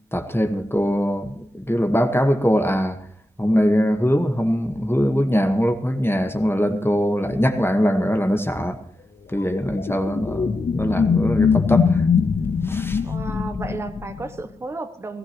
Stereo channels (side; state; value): both; normal; correlation 0.88